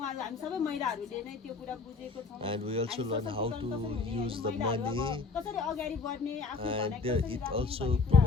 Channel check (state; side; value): quieter; right; 4.4 dB